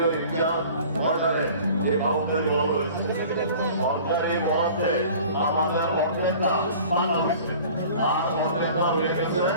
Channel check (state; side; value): inverted; both; correlation -0.45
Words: এক্সাম অর্ডারে এই বাউন্ডারি বল হয়েছে সরকারি মধ্যে আমাদের অর্ধেকটা মানা হয়েছে আর অর্ধেকটা হয়ে গেছে